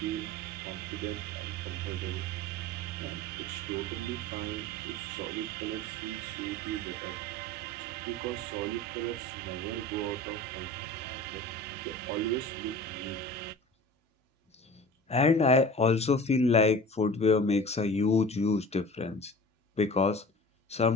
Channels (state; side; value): normal; both; correlation 0.39